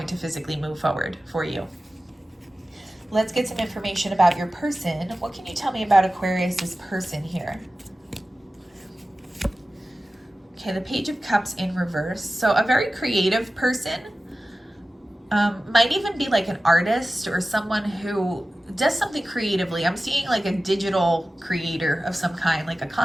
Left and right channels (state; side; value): normal; both; correlation 0.95